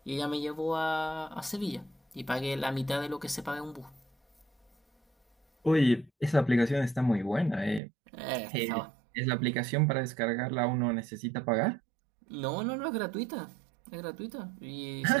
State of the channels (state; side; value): drops out; left; at 7.8 s